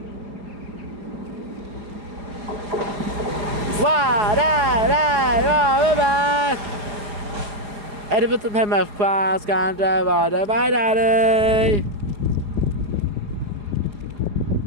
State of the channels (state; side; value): late; left; 4.8 ms